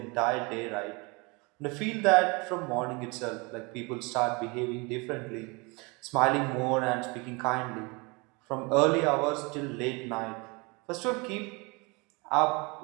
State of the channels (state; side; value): quieter; left; 28.1 dB